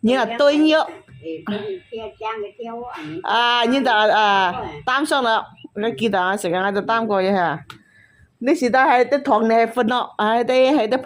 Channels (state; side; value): identical; both; correlation 1.00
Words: 然後對咗。啊，然就擔上啦，你記得啊，成日我就擔過嘢嚇。你時代係啲糖你係分咯，係啲